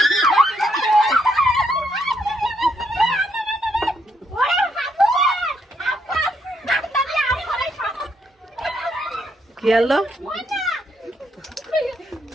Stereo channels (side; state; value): both; normal; correlation 0.75